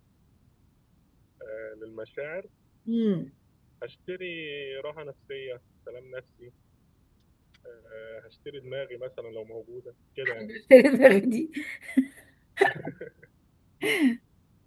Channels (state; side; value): identical; both; correlation 1.00